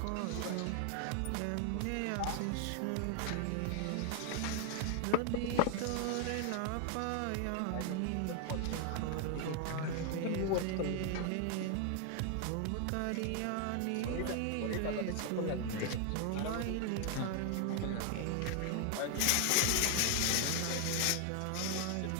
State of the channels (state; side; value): different; both; correlation 0.00